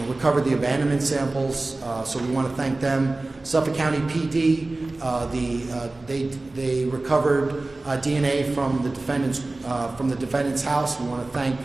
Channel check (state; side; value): quieter; left; 3.0 dB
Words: recovered the abandonment samples. So we want to thank them. Suffolk County PD, they recovered DNA from the defendant's house. We want to thank